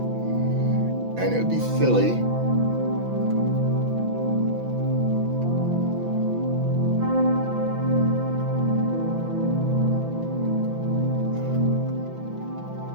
And it would be silly.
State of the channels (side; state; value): left; late; 5.9 ms